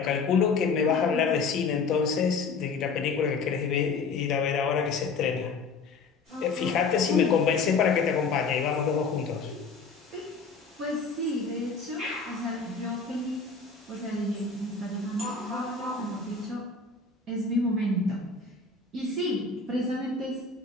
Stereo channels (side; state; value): right; quieter; 4.6 dB